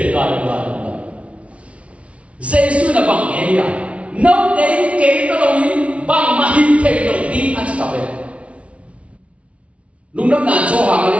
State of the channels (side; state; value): left; late; 0.063 ms